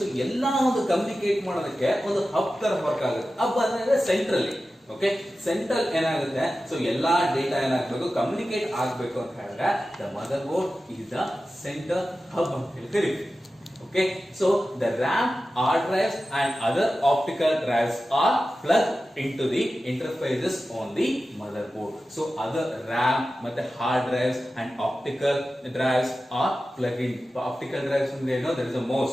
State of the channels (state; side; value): normal; both; correlation 0.94